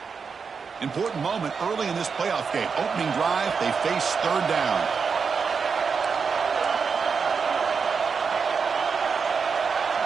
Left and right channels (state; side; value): quieter; left; 5.6 dB